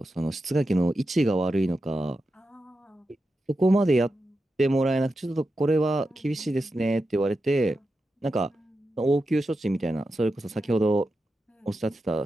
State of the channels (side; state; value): both; normal; correlation 0.90